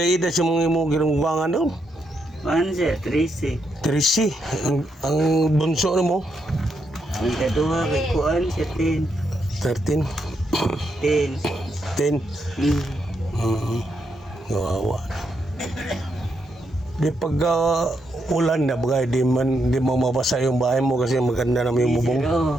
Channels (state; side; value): normal; both; correlation 0.80